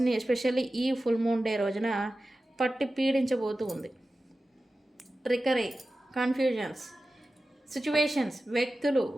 ఎస్పెషల్లీ ఈ ఫుల్ మూన్ డే రోజున పట్టి పీడించబోతూ ఉంది. ట్రికరీ, కన్ఫ్యూజన్స్, సిచ్యువేషన్స్, వ్యక్తులు,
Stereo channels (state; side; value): normal; both; correlation 0.94